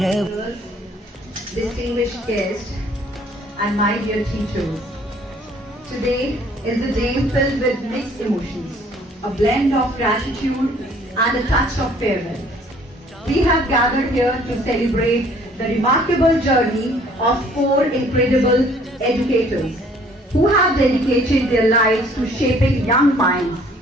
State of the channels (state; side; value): normal; both; correlation 0.58